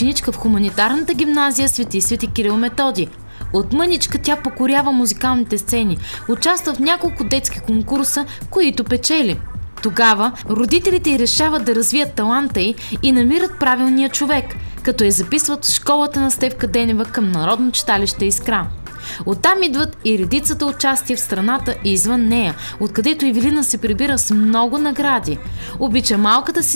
в хуманитарната гимназия Свети Кирил Методи. От мъничка тя покорява музикалните сцени, участва в няколко детски конкурса, които печели. Тогава родителите й решават да развият таланта й и намират правилния човек, като я записват в школата на Стефка Денева към Народно читалище Искра. Оттам идват и редицата участия в страната и извън нея, откъдето Ивилина се прибира с много награди. Обича малката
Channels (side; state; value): both; inverted; correlation -1.00